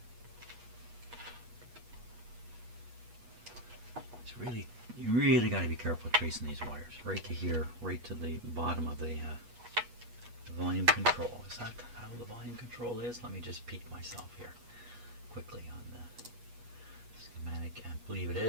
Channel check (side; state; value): left; late; 8.3 ms